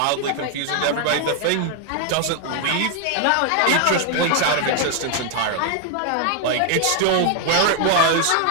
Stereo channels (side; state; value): both; different; correlation 0.00